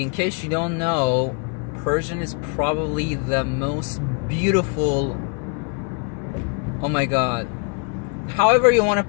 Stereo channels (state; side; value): quieter; right; 33.1 dB